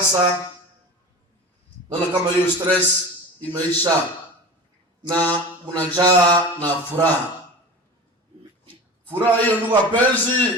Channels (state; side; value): normal; both; correlation 0.32